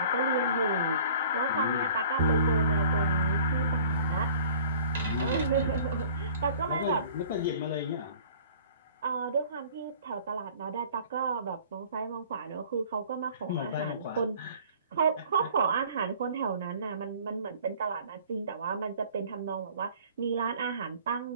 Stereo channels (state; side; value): inverted; both; correlation -0.49